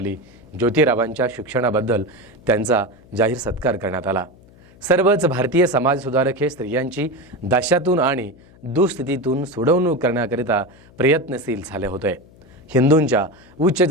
ज्योतिरावांच्या शिक्षणाबद्दल त्यांचा जाहीर सत्कार करण्यात आला. सर्वच भारतीय समाजसुधारक हे स्त्रियांची दास्यातून आणि दुस्थितीतून सोडवणूक करण्याकरिता प्रयत्नशील झाले होते. हिंदूंच्या उच्च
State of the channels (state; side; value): noise; left; hum, 26 dB below the sound